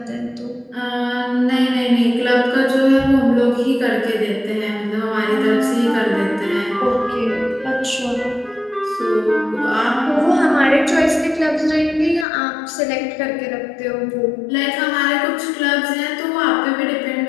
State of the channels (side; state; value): right; drops out; at 12.2 s